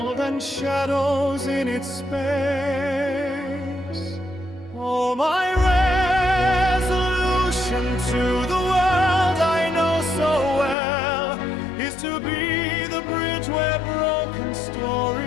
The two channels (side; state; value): right; drops out; at 10.8 s